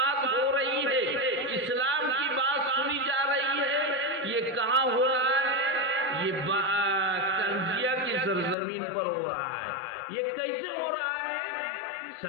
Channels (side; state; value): right; drops out; at 8.6 s